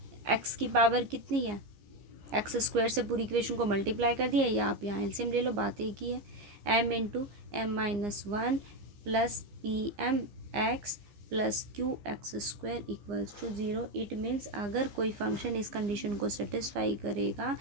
एक्स की पावर कितनी है, एक्स स्क्वायर से पूरी equation को multiply कर दिया, या आप यहाँ एलसीएम ले लो, बात एक ही है। M into m minus one plus P M x plus q x square equals to zero. It means अगर कोई फंक्शन इस कंडीशन को सेटिस्फाई करेगा,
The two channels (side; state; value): left; late; 15 ms